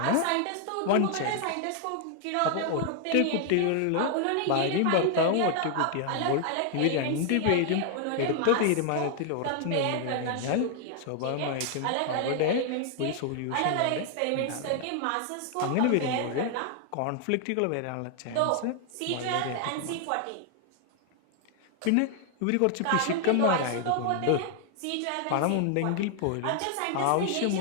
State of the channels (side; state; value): both; different; correlation 0.00